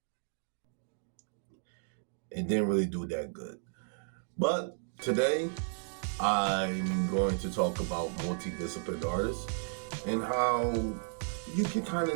It didn't really do that good. But today, I'm going to talk about multidisciplinary artists and how you can kind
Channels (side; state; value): left; silent; digital silence